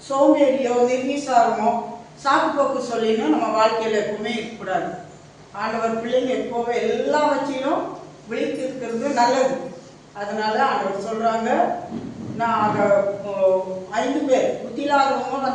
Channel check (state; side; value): identical; both; correlation 1.00